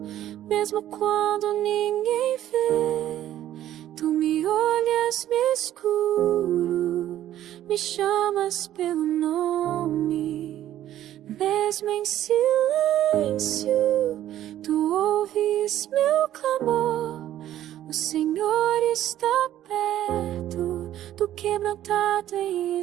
mesmo quando ninguém vê. Tu me olhas, me escuro, me chamas pelo nome. Mesmo em silêncio, tu ouves meu clamor. O Senhor está perto do quebrantado em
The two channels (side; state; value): left; quieter; 12.4 dB